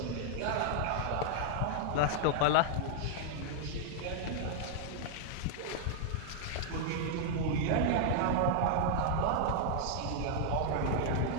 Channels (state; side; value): different; both; correlation 0.00